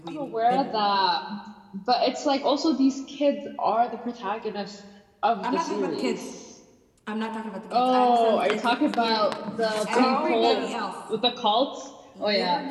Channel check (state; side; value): identical; both; correlation 1.00